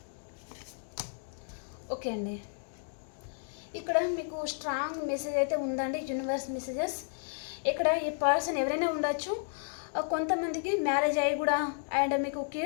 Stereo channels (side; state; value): right; silent; digital silence